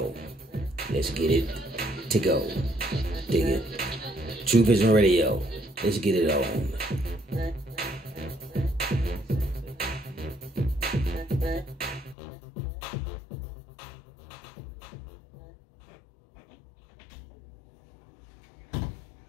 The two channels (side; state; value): right; drops out; at 12.2 s